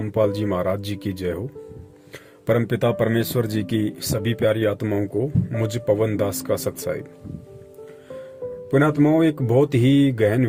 जी महाराज जी की जय हो। परमपिता परमेश्वर जी की सभी प्यारी आत्माओं को मुझ पवन दास का सत्साई। पुण्यात्माओं, एक बहुत ही गहन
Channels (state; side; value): identical; both; correlation 1.00